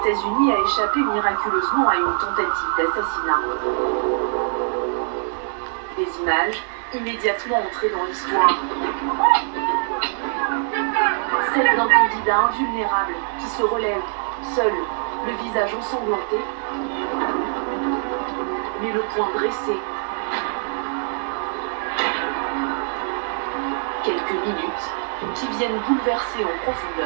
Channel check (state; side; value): silent; left; 63 dB below the other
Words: a échappé miraculeusement à une tentative d'assassinat. Des images immédiatement entrées dans l'histoire. Celle d'un candidat invulnérable qui se relève, seul, le visage ensanglanté, mais le poing dressé. Quelques minutes qui viennent bouleverser en